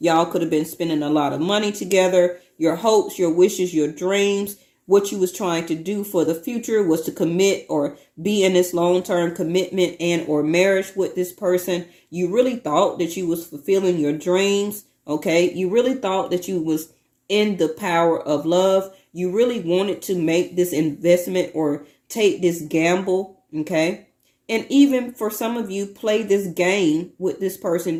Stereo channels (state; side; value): identical; both; correlation 1.00